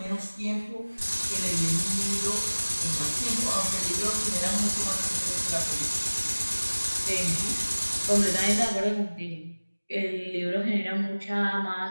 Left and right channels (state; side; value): inverted; both; correlation -1.00